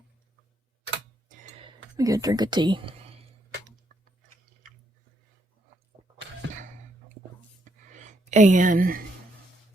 Let me get a drink of tea. And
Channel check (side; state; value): both; normal; correlation 0.75